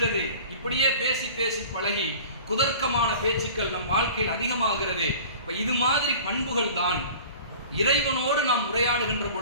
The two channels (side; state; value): both; inverted; correlation -0.42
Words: இப்படியே பேசி பேசி பழகி குதர்க்கமான பேச்சுக்கள் நம் வாழ்க்கையில் அதிகமாகிறது. இப்ப இது மாதிரி பண்புகள் தான் இறைவனோடு நாம் உரையாடுகின்ற